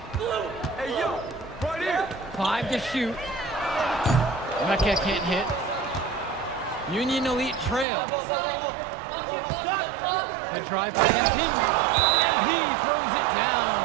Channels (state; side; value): drops out; left; at 7.9 s